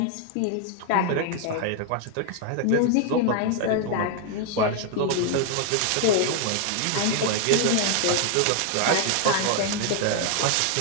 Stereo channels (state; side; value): different; both; correlation 0.00